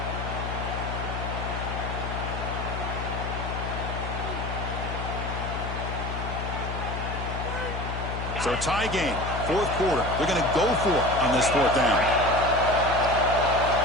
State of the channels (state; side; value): noise; left; hum, 5 dB below the sound